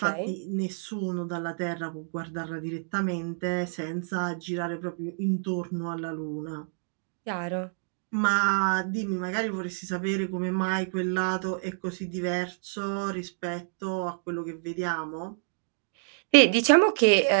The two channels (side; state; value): left; silent; digital silence